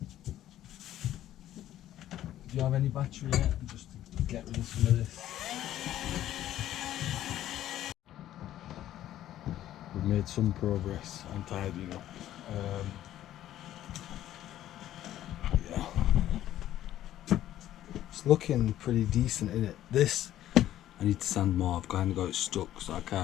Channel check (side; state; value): right; quieter; 12.7 dB